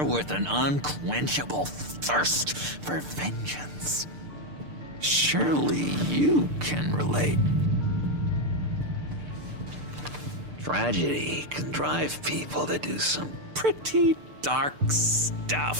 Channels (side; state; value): left; late; 6.7 ms